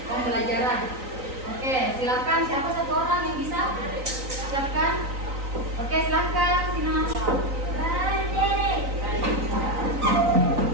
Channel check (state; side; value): late; left; 3.9 ms